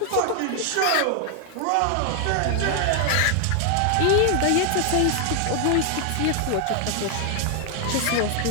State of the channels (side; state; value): both; different; correlation 0.00